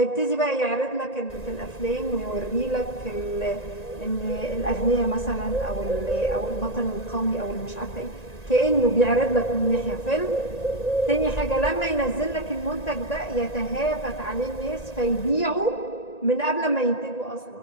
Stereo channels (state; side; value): late; right; 1.9 ms